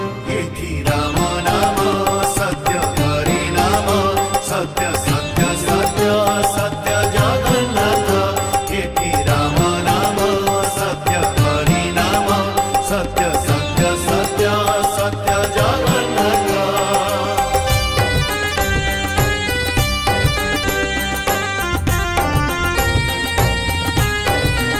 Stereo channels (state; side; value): identical; both; correlation 1.00